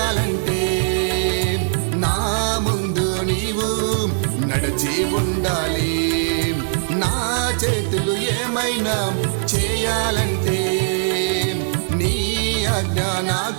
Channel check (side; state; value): left; silent; 65 dB below the other